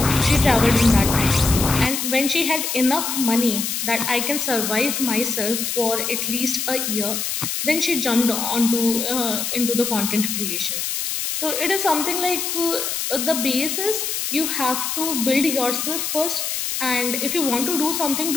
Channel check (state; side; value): noise; left; hiss, 2 dB below the sound